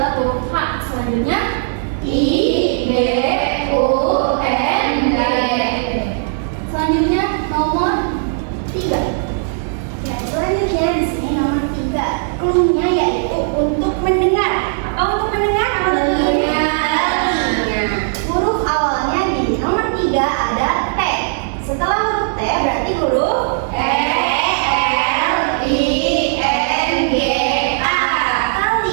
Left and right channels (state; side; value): silent; left; digital silence